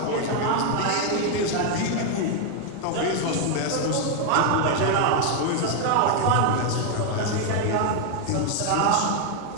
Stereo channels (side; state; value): both; different; correlation 0.01